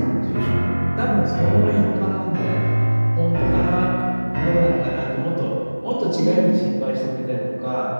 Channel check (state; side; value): inverted; both; correlation -1.00